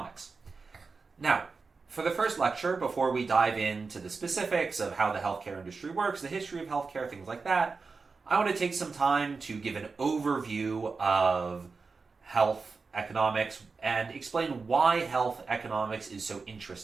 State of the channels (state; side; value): quieter; left; 4.5 dB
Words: Now, for the first lecture, before we dive into the specifics of how the healthcare industry works, the history of healthcare, things like that, I want to take some time to give an overview of health economics and explain why health economics is so